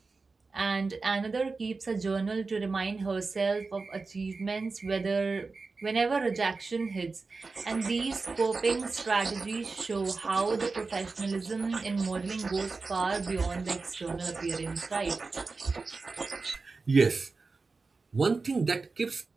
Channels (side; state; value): left; quieter; 4.1 dB